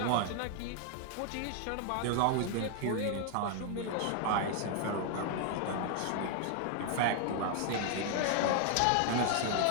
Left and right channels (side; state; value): both; different; correlation 0.00